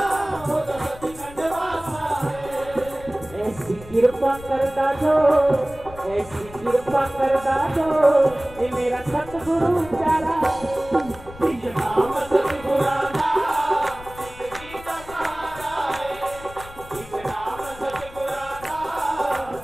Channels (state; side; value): noise; left; rumble, 17 dB below the sound